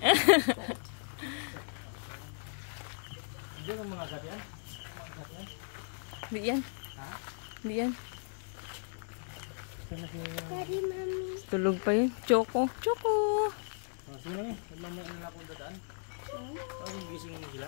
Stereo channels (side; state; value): right; silent; digital silence